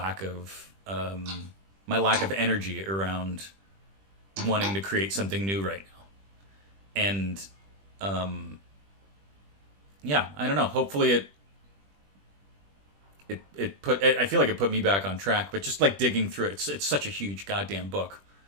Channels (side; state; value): left; late; 20 ms